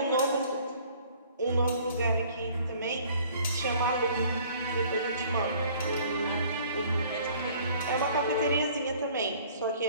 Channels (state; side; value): inverted; both; correlation -0.54